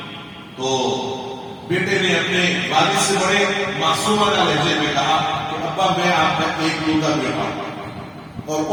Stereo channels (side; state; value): both; identical; correlation 1.00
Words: تو بیٹے نے اپنے والد سے بڑے معصومانہ لہجے میں کہا کہ ابا میں آپ کا ایک لوٹا بیٹا ہوں اور